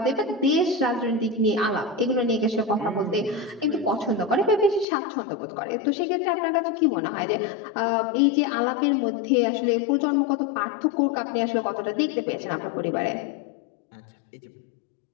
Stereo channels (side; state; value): right; drops out; at 4.9 s